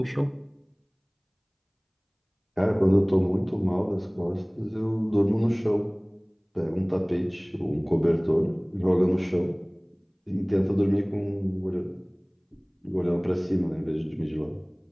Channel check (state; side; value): identical; both; correlation 1.00